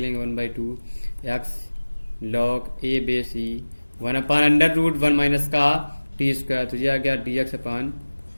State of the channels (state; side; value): inverted; both; correlation -1.00